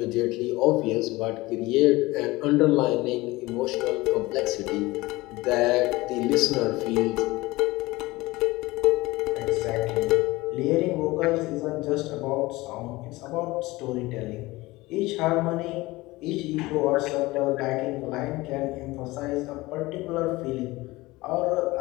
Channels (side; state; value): right; quieter; 20.3 dB